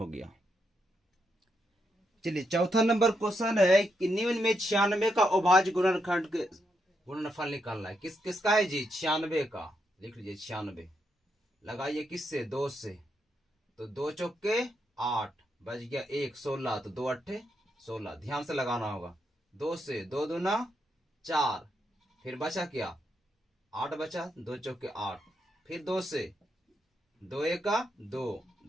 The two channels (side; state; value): both; normal; correlation 0.81